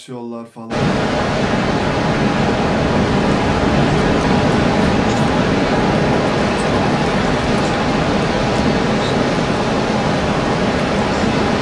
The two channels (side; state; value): both; identical; correlation 1.00